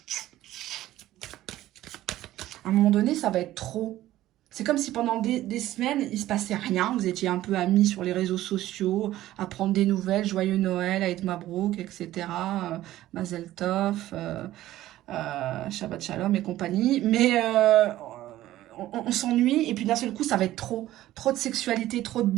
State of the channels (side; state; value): left; quieter; 14.7 dB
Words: À un moment donné, ça va être trop. C'est comme si pendant des semaines, il ne se passait rien. Vous étiez un peu amis sur les réseaux sociaux, à prendre des nouvelles, joyeux Noël, Aïd Mabrouk, etc. Mazel Tov, Shabbat Shalom et compagnie. Mais on s'ennuie et puis d'un seul coup, ça va être trop. Trop de sexualité, trop de